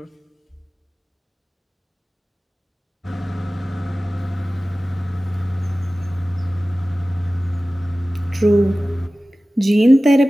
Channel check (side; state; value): both; normal; correlation 0.97